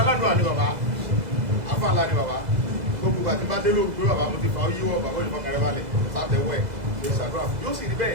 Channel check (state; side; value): late; left; 2.0 ms